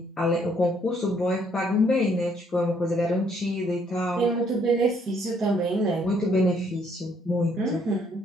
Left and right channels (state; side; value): normal; both; correlation 0.67